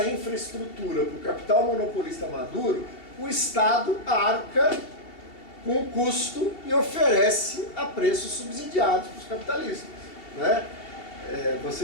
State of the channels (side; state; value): right; late; 2.7 ms